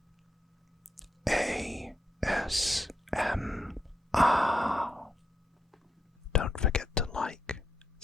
ASMR. Don't forget to like,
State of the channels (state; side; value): normal; both; correlation 0.82